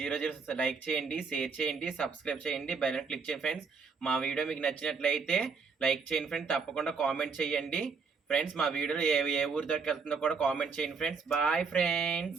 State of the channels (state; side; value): quieter; left; 5.1 dB